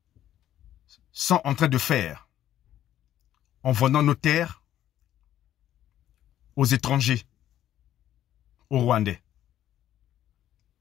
sont en train de faire en vendant nos terres aux étrangers, aux Rwandais.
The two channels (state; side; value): quieter; right; 11.9 dB